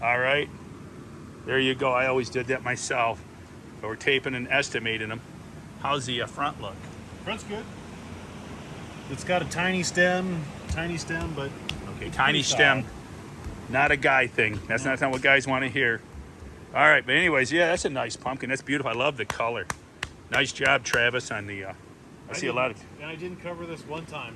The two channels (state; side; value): identical; both; correlation 1.00